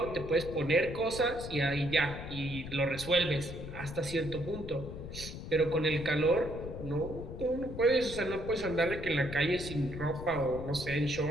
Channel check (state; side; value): noise; left; rumble, 10 dB below the sound